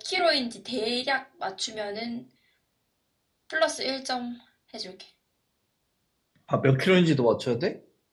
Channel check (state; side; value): identical; both; correlation 1.00